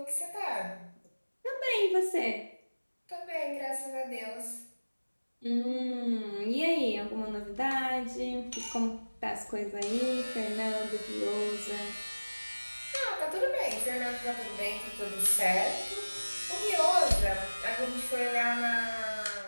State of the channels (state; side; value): inverted; both; correlation -1.00